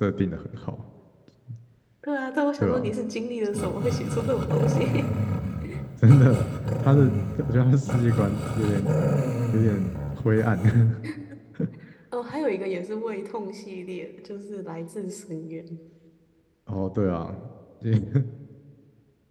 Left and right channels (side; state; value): both; identical; correlation 1.00